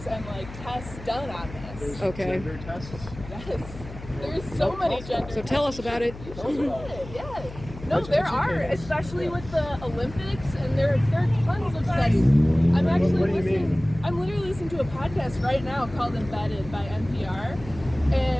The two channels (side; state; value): left; noise; hum, 14 dB below the sound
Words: and like tests done on this. There's Okay. gender tests. Yes. There's so many gender. So tell us about it. Yeah. No, there are, especially with the Olympics, and there are tons of studies. I'm actually What do you listening. mean? I'm literally listening to a podcast right now called Embedded by NPR,